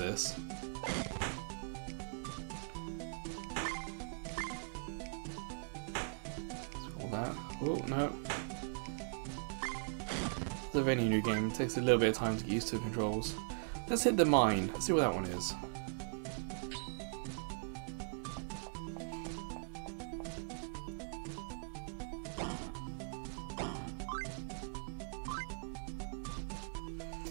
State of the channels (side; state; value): left; silent; digital silence